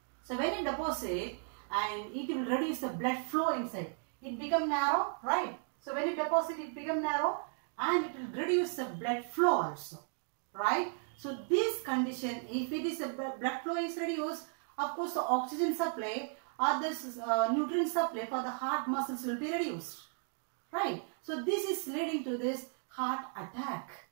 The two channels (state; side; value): silent; left; 54 dB below the other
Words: So when it deposits and it will reduce the blood flow inside, it become narrow, right? So when it deposits, it become narrow and it will reduce the blood flow also, right? So this condition, if it is a blood flow is reduced, of course the oxygen supply or this nutrient supply for the heart muscles will be reduced, right? So this is leading to this heart attack.